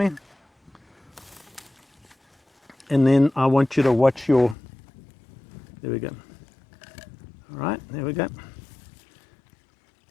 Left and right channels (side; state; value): right; drops out; at 4.5 s